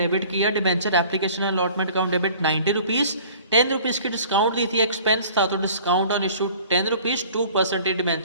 किया, debenture application allotment account debit 90 rupees. 10 rupees की डिस्काउंट दी थी, एक्सपेंस था, तो discount on issue 10 rupees, 2%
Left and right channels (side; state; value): both; inverted; correlation -0.48